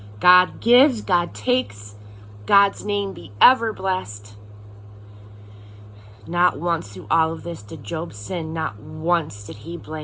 God gives, God takes. God's name be ever blessed." Not once through all of this did Job sin. Not once did he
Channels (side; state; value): both; identical; correlation 1.00